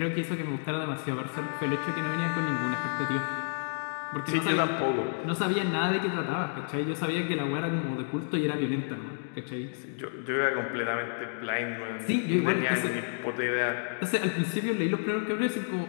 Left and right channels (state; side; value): silent; right; digital silence